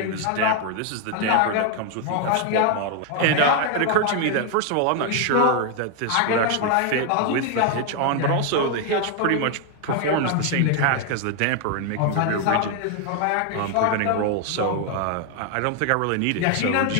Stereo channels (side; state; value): both; different; correlation 0.00